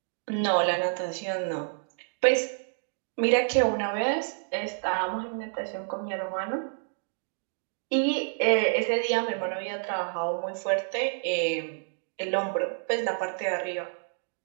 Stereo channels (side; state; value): left; silent; digital silence